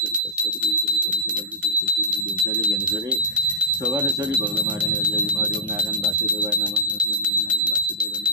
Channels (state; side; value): normal; both; correlation -0.12